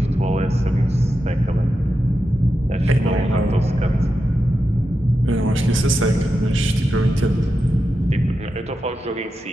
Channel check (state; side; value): normal; both; correlation 0.89